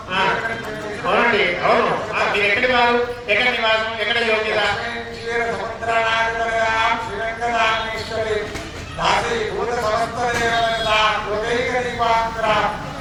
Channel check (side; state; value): both; identical; correlation 1.00